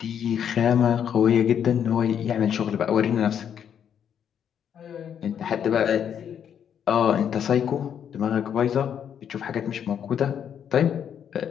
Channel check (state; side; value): quieter; right; 8.6 dB